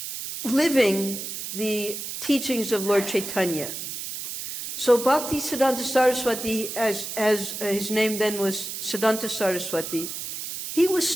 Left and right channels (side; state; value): right; noise; hiss, 7 dB below the sound